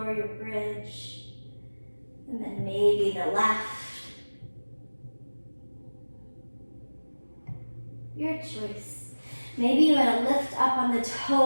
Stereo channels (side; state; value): both; inverted; correlation -1.00